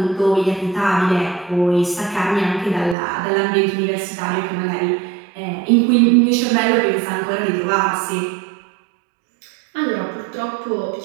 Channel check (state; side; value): drops out; left; at 3.0 s